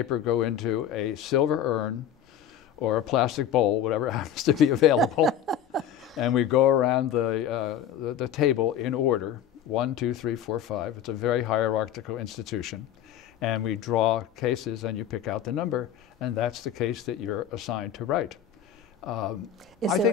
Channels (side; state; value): right; quieter; 9.2 dB